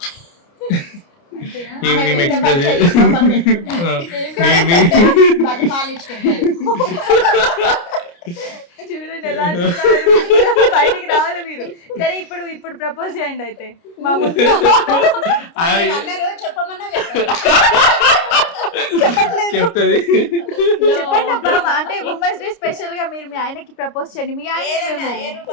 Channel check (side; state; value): right; late; 29 ms